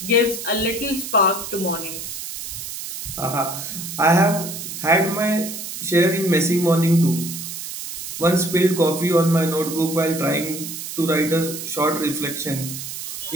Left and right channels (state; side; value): noise; right; hiss, 8 dB below the sound